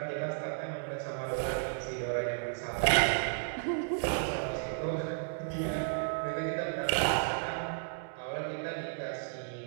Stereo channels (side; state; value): left; silent; digital silence